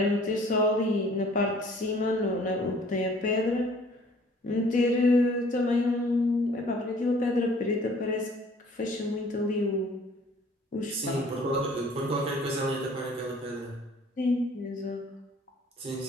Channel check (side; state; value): both; normal; correlation 0.54